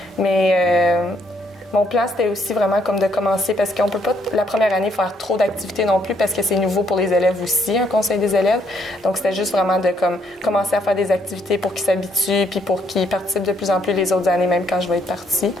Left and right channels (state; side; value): normal; both; correlation 0.71